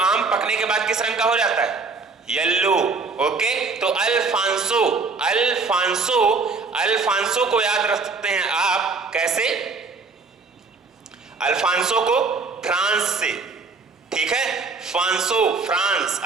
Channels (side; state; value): left; quieter; 4.3 dB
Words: पकने के बाद किस रंग का हो जाता है? Yellow, okay. तो अल्फांसो, अल्फांसो अल्फांसो को याद रख सकते हैं आप कैसे? अल्फांसो को फ्रांस से, ठीक है, फांसो फ्रांस,